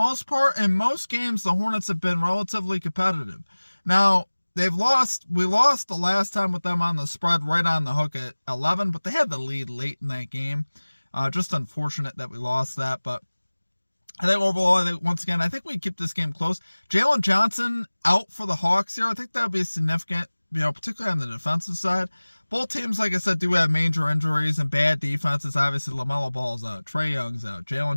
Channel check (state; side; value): inverted; both; correlation -1.00